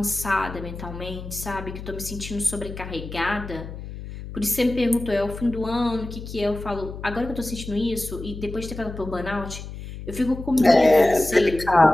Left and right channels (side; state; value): left; noise; hum, 11 dB below the sound